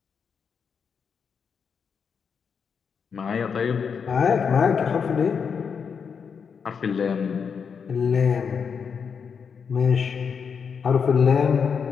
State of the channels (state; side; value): quieter; right; 6.3 dB